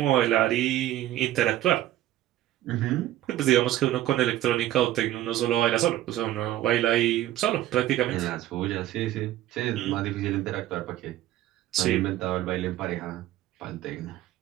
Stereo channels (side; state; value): left; quieter; 13.9 dB